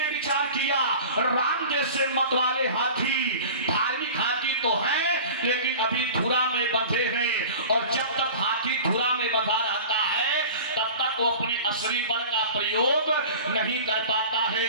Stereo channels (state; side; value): inverted; both; correlation -0.38